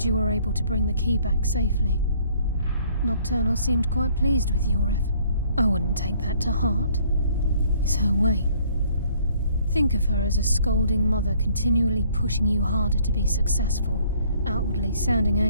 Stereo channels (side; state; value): both; inverted; correlation -0.61